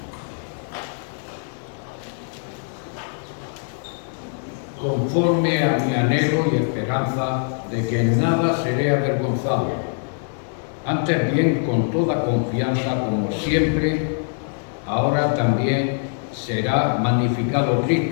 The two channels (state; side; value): silent; right; digital silence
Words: Conforme a mi anhelo y esperanza de que en nada seré avergonzado, antes bien con toda confianza, como siempre, ahora también será magnificado